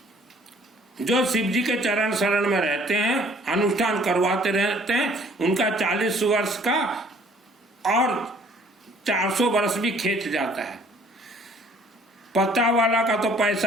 जो शिव जी के चरण शरण में रहते हैं, अनुष्ठान करवाते रहते हैं, उनका 40 वर्ष का और 400 वर्ष भी खींच जाता है। पत्ता वाला का तो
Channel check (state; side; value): normal; both; correlation 0.57